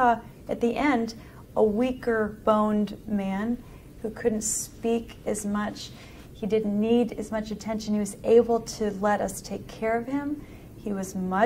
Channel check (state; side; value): identical; both; correlation 1.00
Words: at the end, a weaker boned man who couldn't speak as much. He didn't need as much attention. He was able to let us take care of him. He was